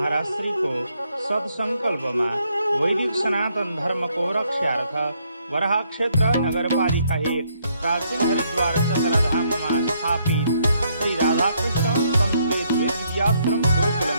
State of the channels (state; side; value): inverted; both; correlation -0.71